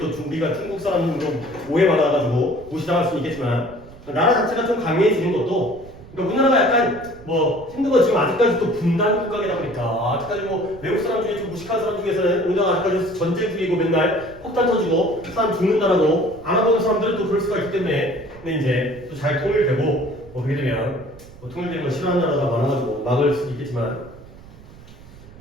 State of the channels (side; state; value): right; noise; rumble, 20 dB below the sound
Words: 우리가 중국 사람으로 오해받아가지고 무시당할 수는 있겠지만 나라 자체가 좀 강해지는 것도 그러니까 우리나라가 약간 뭐 힘든 건 지금 아직까지 또 분단 국가이다 보니까 아직까지 뭐 외국 사람 중에 좀 무식한 사람 중에서는 우리나라가 아직까지 전쟁 중이고 맨날 폭탄 터지고 사람 죽는다라고 알아보는 사람들은 또 그럴 수가 있기 때문에 근데 이제 또 잘 통일되고 뭐 그렇게 되면 뭐 통일되는 걸 싫어하는 나라가 많아가지고 막을 수도 있겠지만